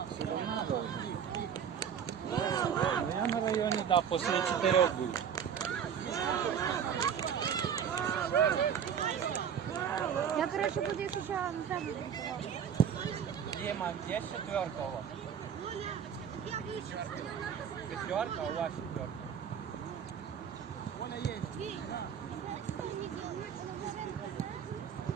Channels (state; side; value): quieter; left; 8.1 dB